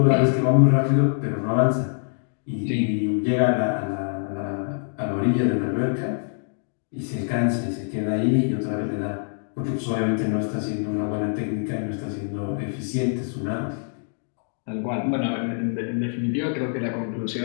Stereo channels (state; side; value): silent; right; digital silence